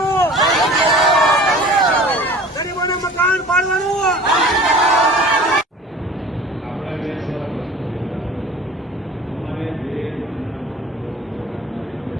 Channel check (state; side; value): normal; both; correlation 0.43